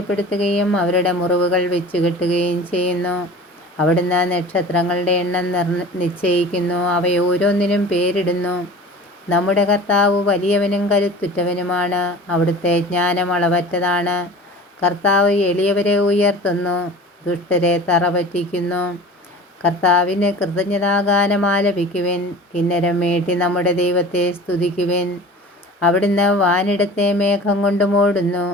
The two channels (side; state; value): both; normal; correlation 0.40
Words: അവരുടെ മുറിവുകൾ വെച്ചുകെട്ടുകയും ചെയ്യുന്നു. അവിടുന്ന് നക്ഷത്രങ്ങളുടെ എണ്ണം നിശ്ചയിക്കുന്നു, അവയോരോന്നിനും പേരിടുന്നു. നമ്മുടെ കർത്താവ് വലിയവനും കരുത്തുറ്റവനുമാണ്. അവിടുത്തെ ജ്ഞാനം അളവറ്റതാണ്. കർത്താവ് എളിയവരെ ഉയർത്തുന്നു, ദുഷ്ടരെ തറപറ്റിക്കുന്നു. കർത്താവിന് കൃതജ്ഞതാഗാനം ആലപിക്കുവിൻ. കിന്നരം മീട്ടി നമ്മുടെ ദൈവത്തെ സ്തുതിക്കുവിൻ. അവിടുന്ന് വാനിടത്തെ മേഘം കൊണ്ട് മൂടുന്നു.